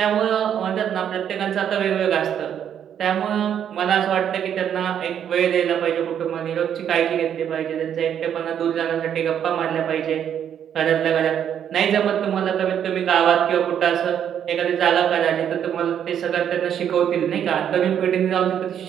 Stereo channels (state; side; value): quieter; left; 9.2 dB